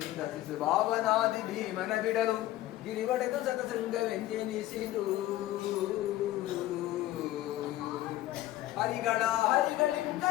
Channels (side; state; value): right; quieter; 15.2 dB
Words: ಶಿಶು ಭಾವನಾದಿ ಭೀಮನ ಬಿಡಲು ಗಿರಿವಡೆದು ಸತಸಂಗವೆಂದೆನಿಸಿದು ಹರಿಗಳ ಹರಿಗಳಿಂ